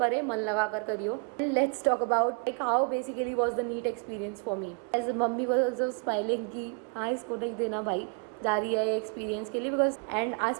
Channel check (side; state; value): left; quieter; 37.2 dB